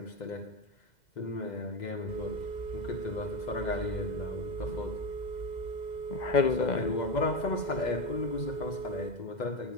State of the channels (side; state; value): right; late; 2.0 ms